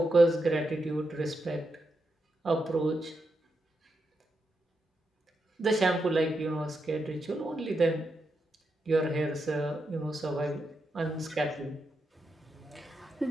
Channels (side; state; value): both; normal; correlation 0.85